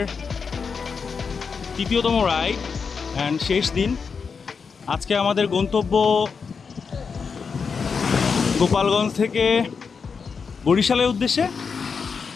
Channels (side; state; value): right; quieter; 5.6 dB